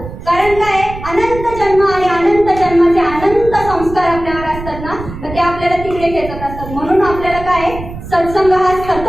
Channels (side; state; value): right; noise; rumble, 11 dB below the sound